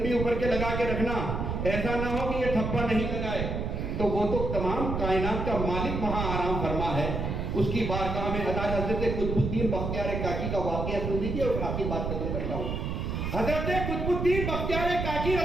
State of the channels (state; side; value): noise; right; rumble, 2 dB below the sound